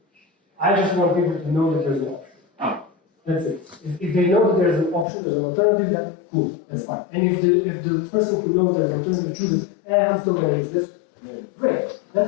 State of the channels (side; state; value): right; drops out; at 5.1 s